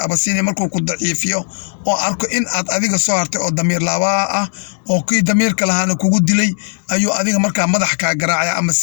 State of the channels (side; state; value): right; silent; digital silence